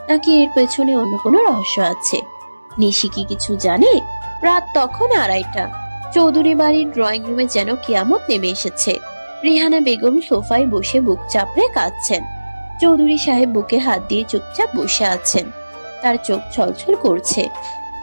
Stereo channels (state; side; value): inverted; both; correlation -1.00